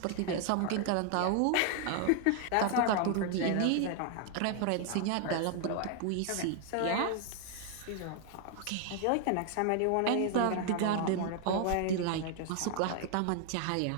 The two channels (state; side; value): different; both; correlation 0.00